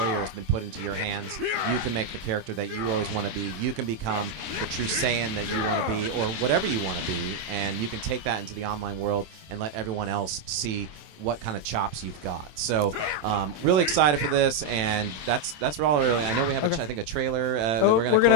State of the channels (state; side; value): late; left; 27 ms